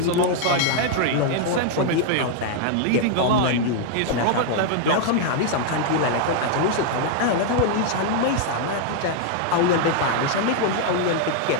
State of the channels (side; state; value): both; different; correlation 0.00